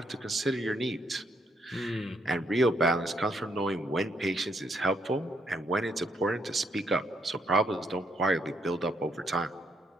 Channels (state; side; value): normal; both; correlation 0.73